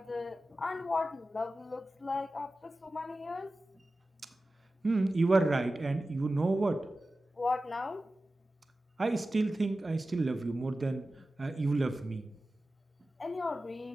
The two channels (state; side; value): normal; both; correlation 0.95